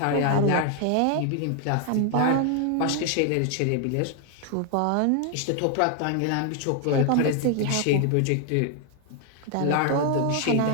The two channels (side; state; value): both; different; correlation 0.00